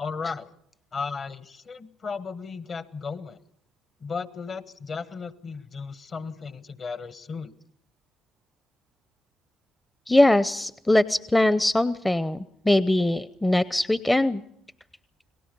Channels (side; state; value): both; normal; correlation 0.97